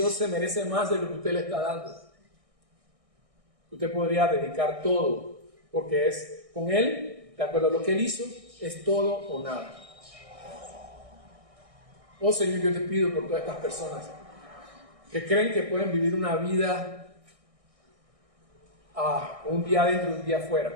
se merece más de lo que usted le está dando. Usted podría dedicar todo, porque es con Él, de acuerdo a lo que Él hizo, es todo o nada. Oh Señor, yo te pido por todas estas personas que creen que pueden vivir una vida un día adentro y un día afuera,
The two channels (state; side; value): late; left; 1.6 ms